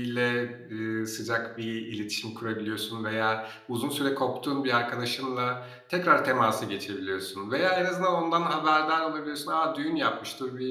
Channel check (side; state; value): both; identical; correlation 1.00